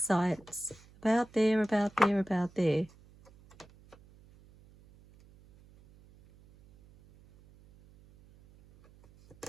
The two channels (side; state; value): right; noise; hum, 26 dB below the sound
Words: size. About there, about there, about there.